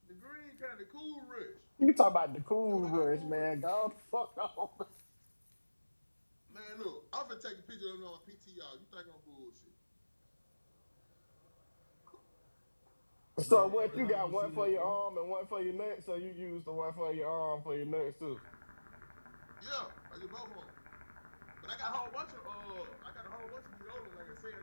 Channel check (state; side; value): inverted; both; correlation -1.00